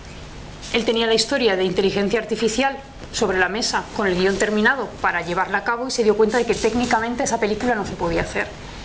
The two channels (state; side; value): identical; both; correlation 1.00